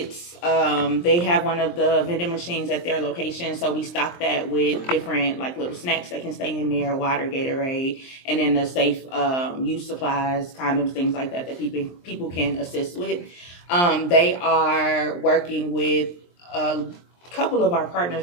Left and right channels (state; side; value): late; right; 23 ms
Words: They have one of the vending machines at their location, so we stock that with different little snacks that can stay in there, water, Gatorade, and then the safe use supplies, condoms, things like that people can assist with. They are working with a couple of our partners